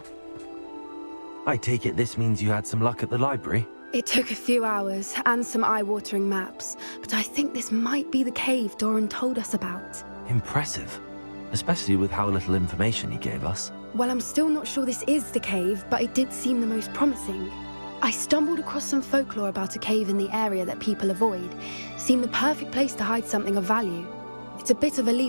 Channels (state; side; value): inverted; both; correlation -1.00